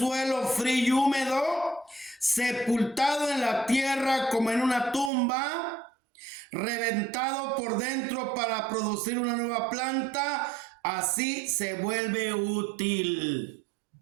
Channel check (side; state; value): left; drops out; at 5.1 s